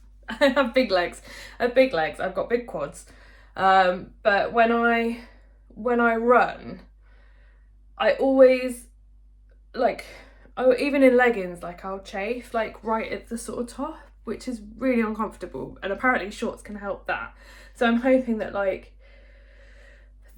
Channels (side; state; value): both; identical; correlation 1.00